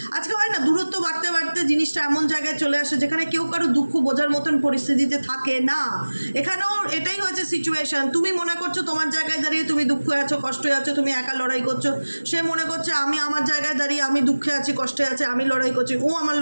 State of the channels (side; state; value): both; inverted; correlation -1.00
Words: আজকে হয় না দূরত্ব বাড়তে বাড়তে জিনিসটা এমন জায়গায় চলে আসে যেখানে কেউ কারো দুঃখ বোঝার মতন পরিস্থিতিতে থাকে না। এখানেও এটাই হয়েছে সিচুয়েশান। তুমি মনে করছো তোমার জায়গায় দাঁড়িয়ে তুমি দুঃখে আছো, কষ্টে আছো, তুমি একা লড়াই করছো। সে মনে করছে আমি আমার জায়গায় দাঁড়িয়ে আমি দুঃখে আছি, কষ্টে আছি, আমি লড়াই করছি, ও আমার